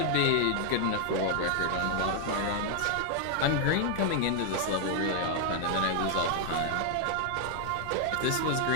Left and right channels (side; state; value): both; different; correlation 0.00